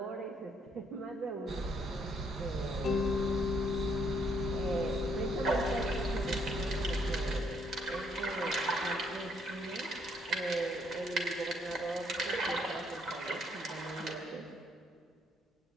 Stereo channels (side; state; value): both; normal; correlation 0.70